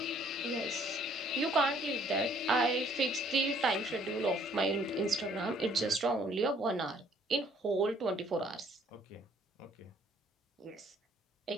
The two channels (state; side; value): normal; both; correlation 0.61